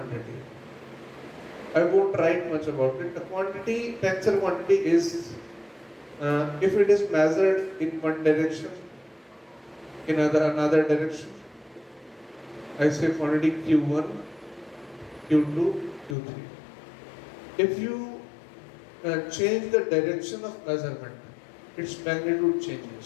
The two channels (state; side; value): drops out; right; at 16.2 s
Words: I won't write much about it. The quantity, tensor quantity is, if it is measured in one direction, in another direction, I say quantity Q1, Q2, Q3. If you change the direction of measurement, its magnitude